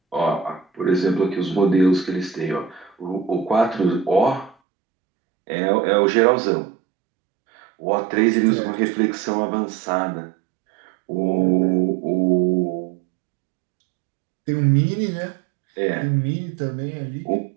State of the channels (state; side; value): drops out; left; at 4.5 s